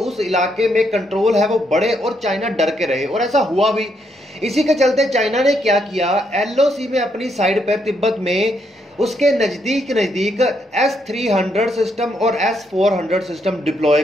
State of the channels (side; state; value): both; normal; correlation 0.76